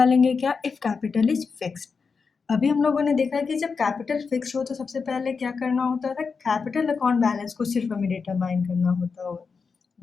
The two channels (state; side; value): quieter; right; 5.2 dB